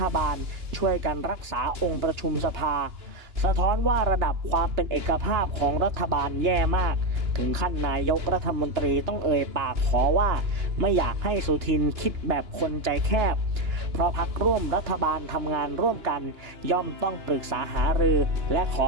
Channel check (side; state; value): left; late; 2.9 ms